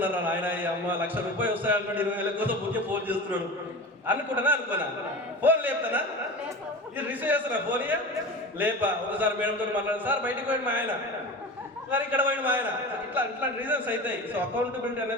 ఆయన, ఈ అమ్మ 1,00,000 రూపాయలు వస్తాయన్నట్టు 20,000 కోసం ఊకే ఫోన్ చేస్తున్నాడు అనుకున్నా. ఫోన్ లేపుతానా, ఇది రిసీవ్ చేస్తున్నా ఫోన్ లేపా. ఒకసారి మేడంతో మాట్లాడారు, సార్ బయటకు పోయింది మా ఆయన, సార్ ఇక్కడ పోయింది మా ఆయన. ఇట్లా రీజన్స్ అవుతాయి. సో అకౌంటబిలిటీ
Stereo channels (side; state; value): both; normal; correlation 0.31